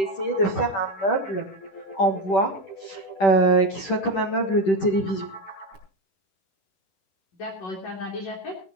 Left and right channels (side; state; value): right; late; 10 ms